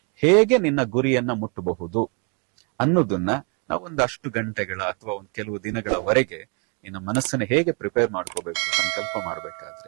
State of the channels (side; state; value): left; quieter; 36.5 dB